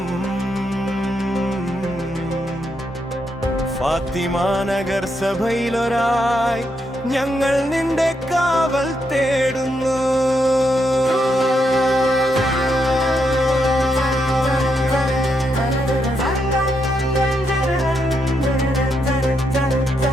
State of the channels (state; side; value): normal; both; correlation 0.80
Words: ഫാത്തിമ നഗർ സഭയിലൊരായി ഞങ്ങൾ നിന്റെ കാവൽ തേടുന്നു.